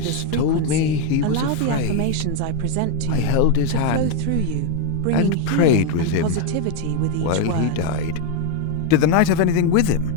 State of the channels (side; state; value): both; different; correlation 0.01